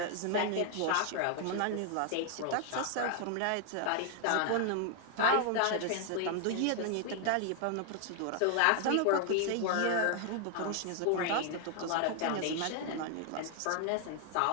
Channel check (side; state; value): both; different; correlation 0.00